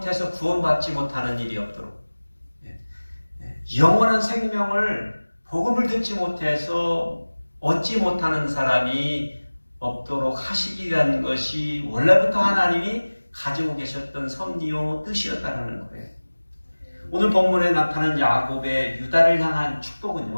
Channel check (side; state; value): both; inverted; correlation -1.00